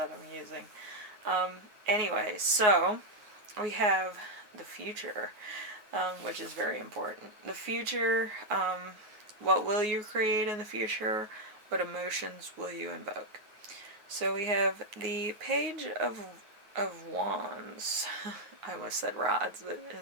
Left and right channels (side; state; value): left; late; 9.5 ms